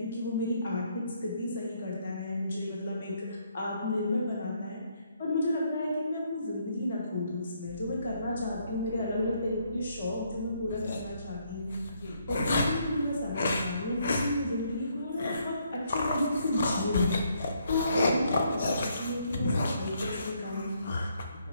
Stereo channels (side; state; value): both; inverted; correlation -0.72